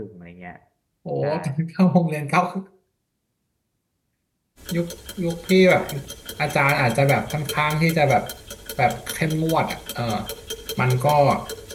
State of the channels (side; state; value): both; identical; correlation 1.00